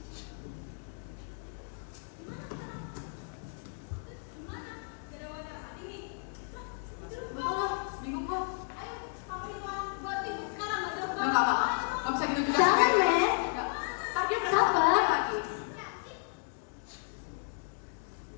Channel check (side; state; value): right; silent; 56 dB below the other